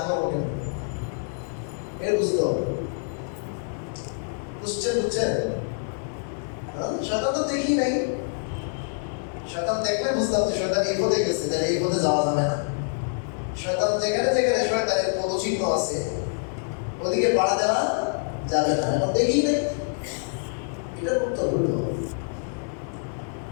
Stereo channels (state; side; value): silent; right; digital silence